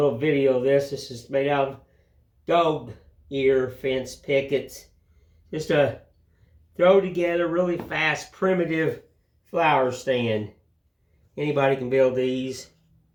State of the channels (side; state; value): both; identical; correlation 1.00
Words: video of this. This is made out of dog ear fence pickets. Just a throw together really fast, primitive flower stand. Anybody can build these.